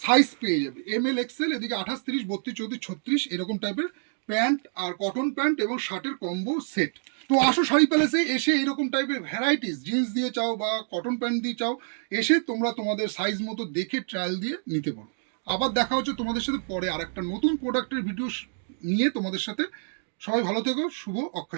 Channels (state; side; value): silent; left; digital silence